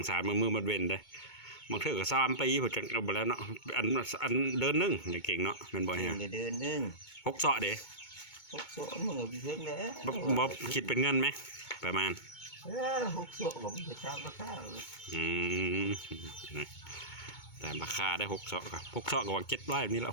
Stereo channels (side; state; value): right; late; 2.2 ms